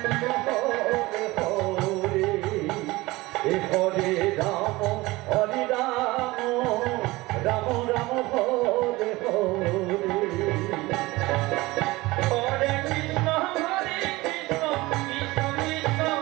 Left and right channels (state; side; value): quieter; left; 20.6 dB